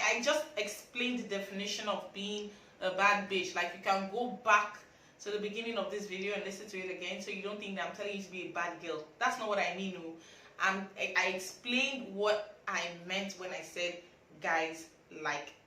just explained the definition of being a bad bitch, like you can go back to the beginning of this video and listen to it again so you don't think that I'm telling you to be a bad girl. That's not what I mean. No. I explained what I meant when I said guys like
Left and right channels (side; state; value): both; identical; correlation 1.00